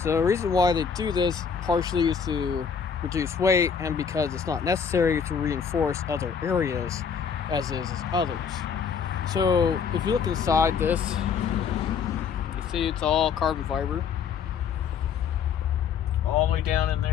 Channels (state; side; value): quieter; right; 6.7 dB